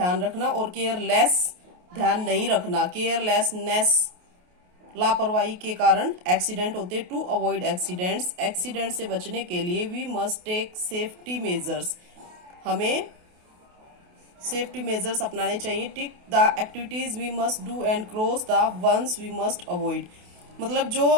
रखना और केयरलेस ध्यान नहीं रखना. केयरलेसनेस लापरवाही के कारण एक्सीडेंट होते. टू अवॉइड एक्सीडेंट्स, एक्सीडेंट से बचने के लिए we must take safety measures. हमें सेफ्टी मेजर्स अपनाने चाहिए. Tick the activities we must do and cross the ones we must avoid. मतलब जो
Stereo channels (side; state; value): left; late; 28 ms